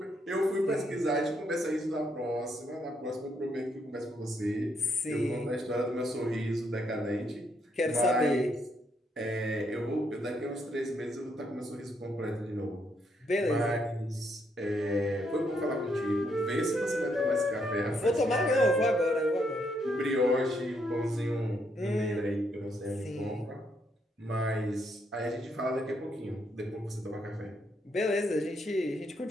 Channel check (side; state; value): both; normal; correlation 0.75